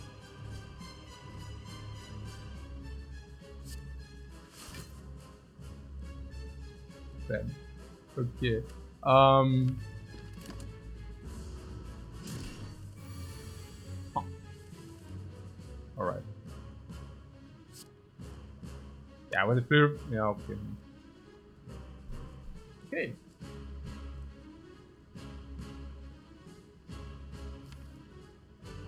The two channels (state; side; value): identical; both; correlation 1.00